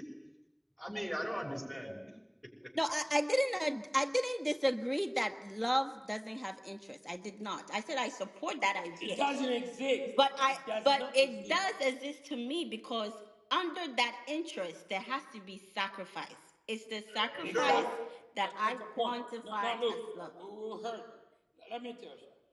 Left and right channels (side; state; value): both; identical; correlation 1.00